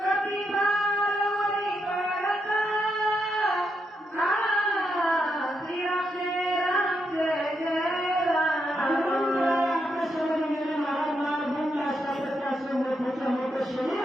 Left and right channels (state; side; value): normal; both; correlation 0.81